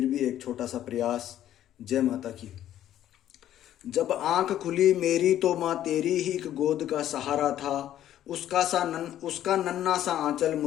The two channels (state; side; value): quieter; right; 11.9 dB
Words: भी एक छोटा सा प्रयास। जय माता की। जब आंख खुली मेरी तो माँ तेरी ही एक गोद का सहारा था। उसका नन्हा सा आंचल